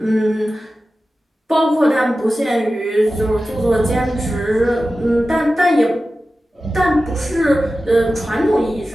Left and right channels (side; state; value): both; normal; correlation 0.94